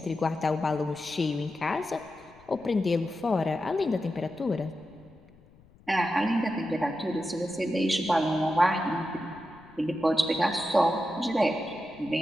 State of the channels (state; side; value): noise; left; rumble, 26 dB below the sound